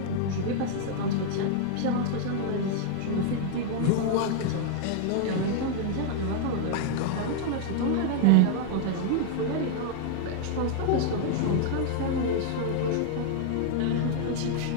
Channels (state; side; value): different; both; correlation 0.00